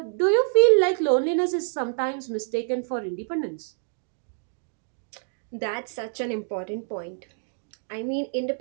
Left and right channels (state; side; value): silent; left; digital silence